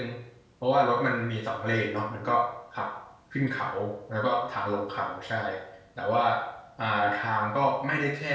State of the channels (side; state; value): both; identical; correlation 1.00